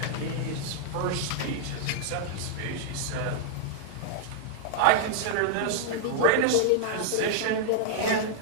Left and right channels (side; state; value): both; different; correlation -0.01